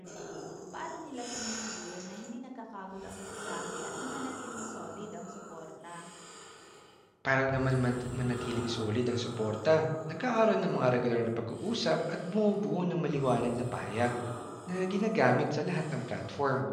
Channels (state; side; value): identical; both; correlation 1.00